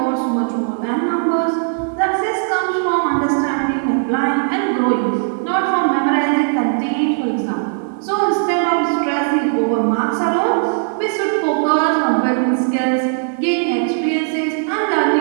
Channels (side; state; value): left; silent; digital silence